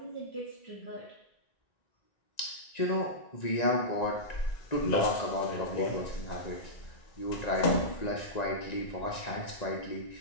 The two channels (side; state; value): right; late; 1.9 ms